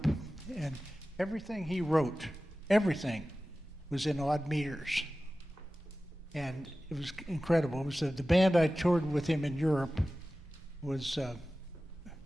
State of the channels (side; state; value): both; normal; correlation 0.96